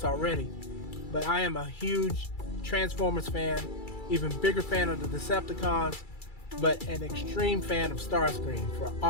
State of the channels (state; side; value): late; right; 2.3 ms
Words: already, but I am a huge Transformers fan, even bigger fan of the Decepticons, but an extreme fan of Starscream for